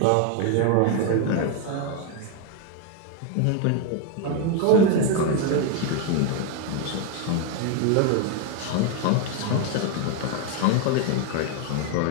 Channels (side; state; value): both; different; correlation 0.01